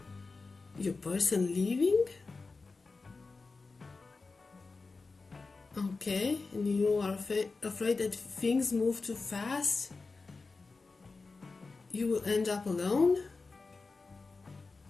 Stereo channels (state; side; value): quieter; right; 4.0 dB